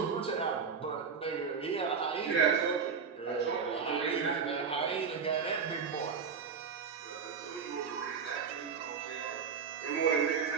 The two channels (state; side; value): quieter; left; 6.0 dB